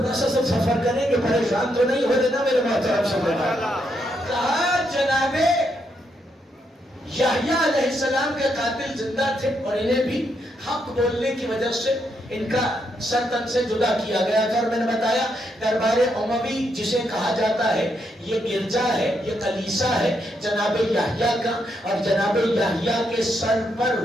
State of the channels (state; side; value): normal; both; correlation 0.79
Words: سا سب سفر کریں گے، پریشان تو نہیں ہو دینا میرے محترم سمجھنا. کہا جناب یحییٰ علیہ السلام کے قاتل زندہ تھے اور انہیں بھی حق بولنے کی وجہ سے ان کا سر تن سے جدا کیا گیا تھا. اور میں نے بتایا دربار اموی جسے کہا جاتا ہے یہ گرجا ہے، یہ کلیسا ہے جناب یحییٰ کا، اور جناب یحییٰ کے سر پر